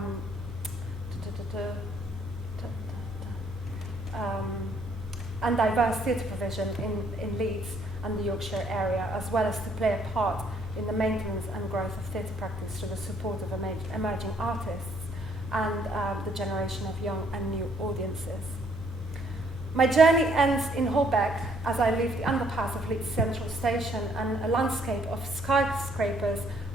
and diverse theatre provision in Leeds and the Yorkshire area, as well as to play a part in the maintenance and growth of theatre practice through the support of emerging artists and the generation of young and new audiences. My journey ends in Holbeck as I leave the underpass of Leeds Central Station, and a landscape of skyscrapers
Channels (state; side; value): normal; both; correlation 0.66